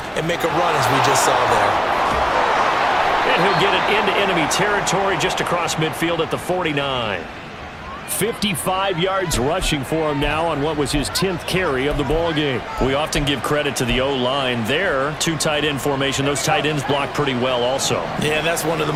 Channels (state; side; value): identical; both; correlation 1.00